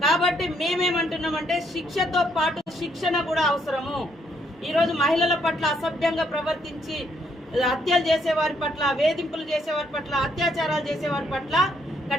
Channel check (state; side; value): normal; both; correlation 0.72